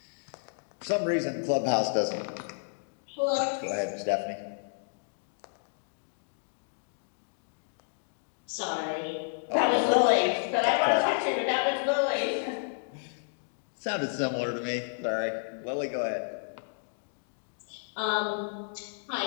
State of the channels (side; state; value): right; silent; digital silence